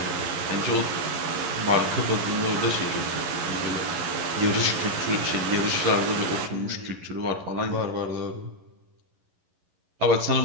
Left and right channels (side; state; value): left; late; 11 ms